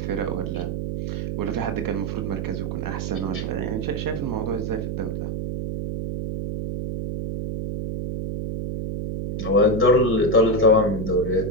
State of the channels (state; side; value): noise; right; hum, 3 dB below the sound